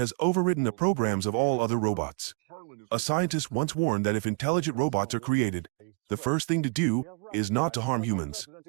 overridden the programs of all other robots. A scientist once warned that if intelligent robots are created, the first thing to do is not to harm humans.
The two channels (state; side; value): quieter; left; 35.3 dB